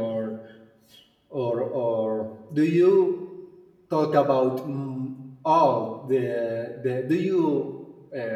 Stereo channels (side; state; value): both; identical; correlation 1.00